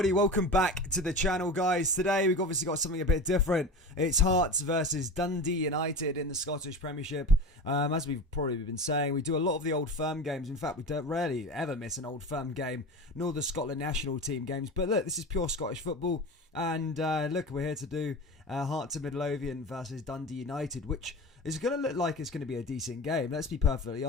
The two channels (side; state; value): both; normal; correlation 0.30